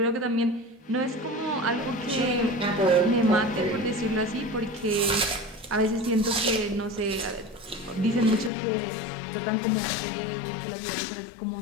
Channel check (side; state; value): right; drops out; at 8.5 s